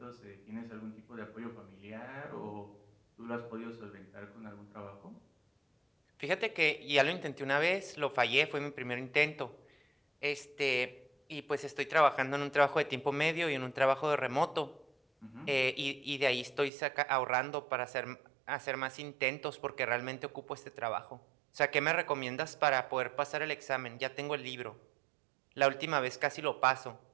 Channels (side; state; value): left; drops out; at 16.7 s